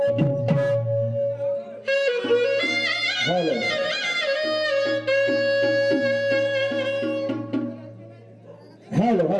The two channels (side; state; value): both; identical; correlation 1.00